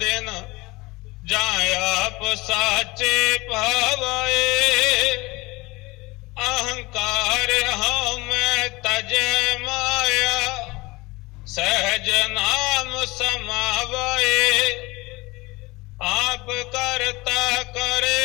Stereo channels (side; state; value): right; quieter; 22.8 dB